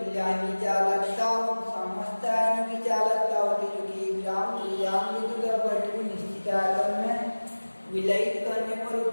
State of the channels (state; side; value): inverted; both; correlation -1.00